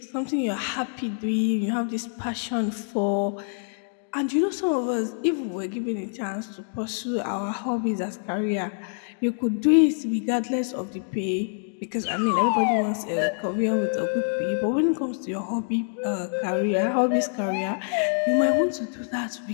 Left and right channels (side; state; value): right; silent; digital silence